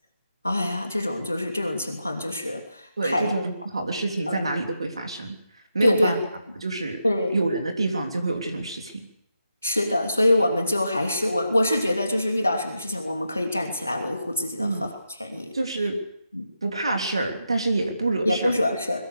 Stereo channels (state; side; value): inverted; both; correlation -0.85